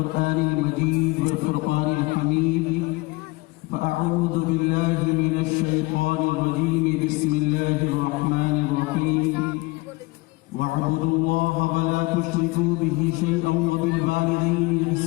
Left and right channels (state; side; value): quieter; right; 23.8 dB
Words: المجيد والفرقان الحميد: فأعوذ بالله من الشيطان الرجيم. بسم الله الرحمن الرحيم. واعبدوا الله ولا تشركوا به شيئا وبالوالدين